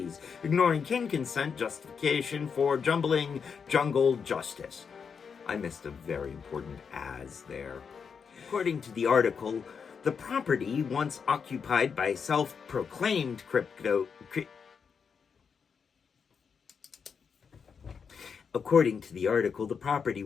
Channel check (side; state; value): right; quieter; 6.2 dB